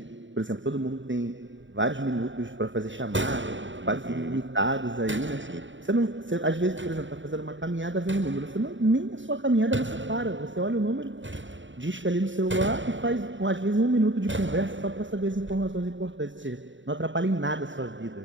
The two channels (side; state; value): left; late; 0.55 ms